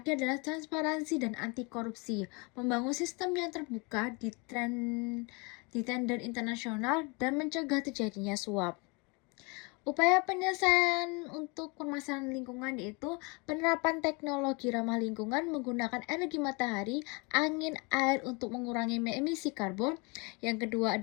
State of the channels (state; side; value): quieter; right; 29.9 dB